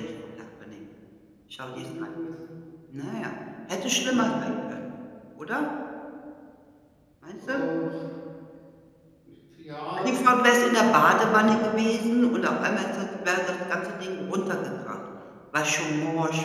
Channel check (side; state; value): both; identical; correlation 1.00